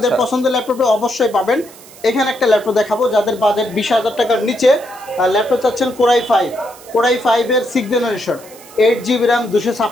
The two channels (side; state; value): right; noise; hiss, 21 dB below the sound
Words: পছন্দের ল্যাপটপে অবশ্যই পাবেন। এখানে একটা ল্যাপটপ দেখাবো যাদের বাজেট 20,000 টাকার নিচে, ল্যাপটপ চাচ্ছেন Core i5 এর 6 generation, 8GB RAM